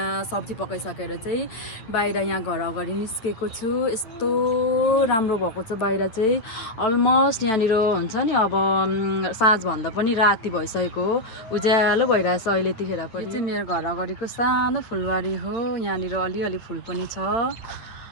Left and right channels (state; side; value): late; right; 9.1 ms